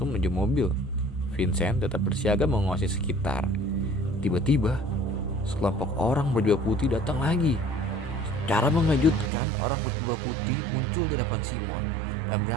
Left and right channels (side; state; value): left; drops out; at 9.3 s